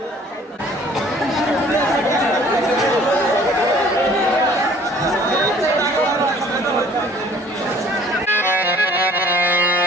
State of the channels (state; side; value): normal; both; correlation 0.54